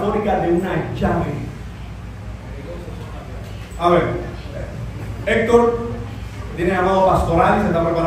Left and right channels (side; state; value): both; identical; correlation 1.00